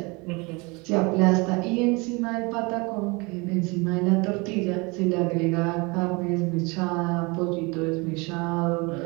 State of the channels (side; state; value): left; quieter; 27.1 dB